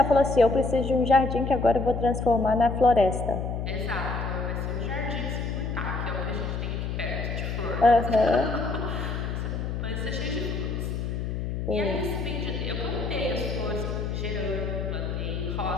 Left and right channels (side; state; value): left; noise; hum, 3 dB below the sound